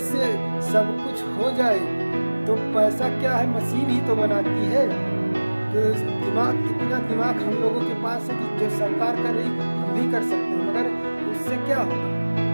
से सब कुछ हो जाए तो पैसा क्या है, मशीन ही तो बनाती है। तो इतना दिमाग हम लोगों के पास है कि जो सरकार कर रही हम भी कर सकते हैं, मगर उससे क्या होगा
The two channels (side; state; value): both; inverted; correlation -1.00